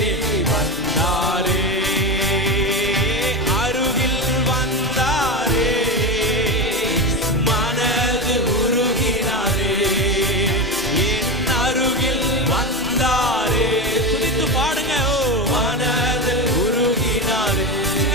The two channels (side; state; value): both; normal; correlation 0.19